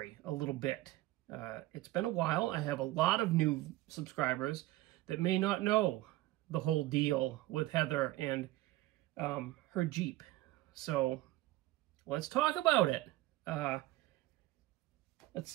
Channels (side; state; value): left; quieter; 17.1 dB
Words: a little bit. It's been a while. I have a lot of new subscribers that may not know the whole deal with Heather and her Jeep. So let's talk about it. Let's